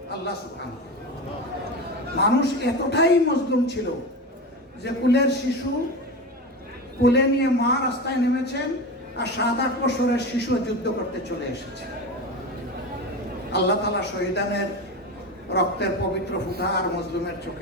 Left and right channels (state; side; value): normal; both; correlation 0.24